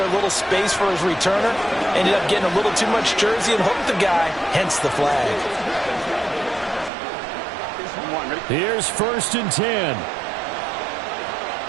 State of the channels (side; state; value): left; drops out; at 6.9 s